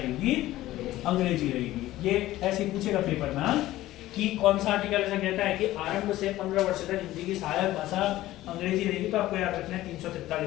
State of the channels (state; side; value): quieter; right; 15.7 dB